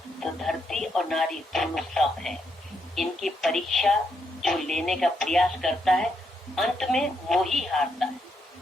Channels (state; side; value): normal; both; correlation 0.78